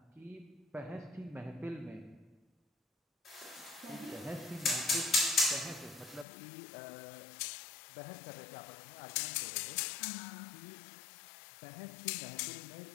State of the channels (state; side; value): drops out; right; at 6.2 s